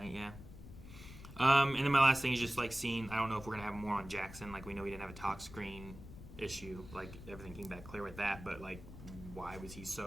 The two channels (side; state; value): left; noise; rumble, 14 dB below the sound